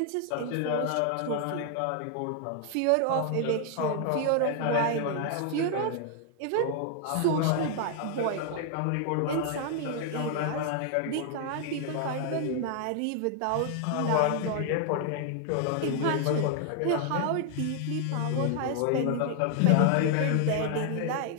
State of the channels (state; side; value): different; both; correlation 0.00